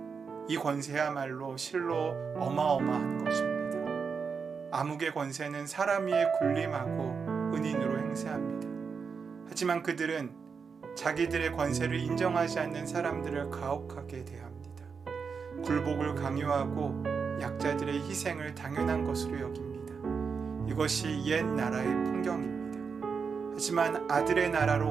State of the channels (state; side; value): quieter; left; 5.7 dB